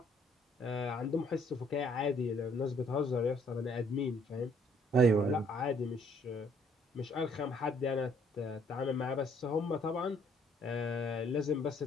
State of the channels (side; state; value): both; normal; correlation 0.64